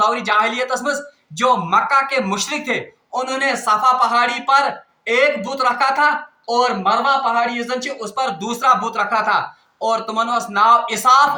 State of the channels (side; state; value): both; identical; correlation 1.00